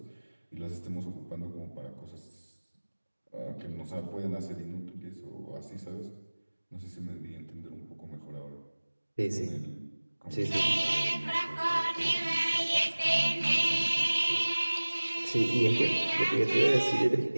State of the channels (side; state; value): both; inverted; correlation -1.00